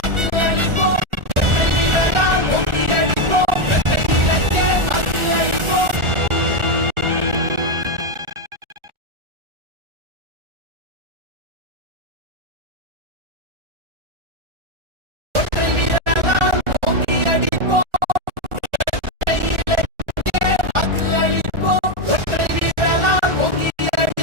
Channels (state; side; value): late; left; 1.4 ms